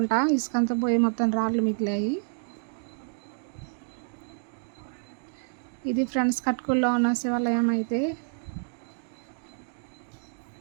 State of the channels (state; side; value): silent; left; 59 dB below the other